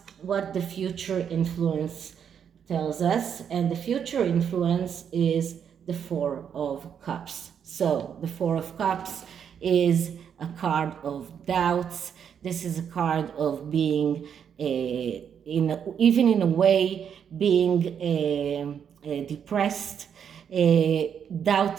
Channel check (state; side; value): quieter; left; 8.0 dB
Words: the future influence tells us. And the future influence is the Four of Cups. So the Four of Cups is a card of doubts. This is a card of being, even in a way, being depressed,